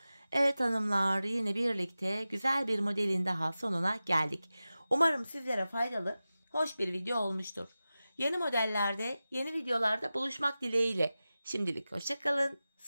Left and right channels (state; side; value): inverted; both; correlation -0.95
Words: Evet hanımlar, yine birlikte güzel bir modelin daha sonuna geldik. Umarım sizlere faydalı, hoş bir video olmuştur. Yeni modellerde, yeni videolarda buluşmak dileğiyle. Şimdilik hoşça kalın,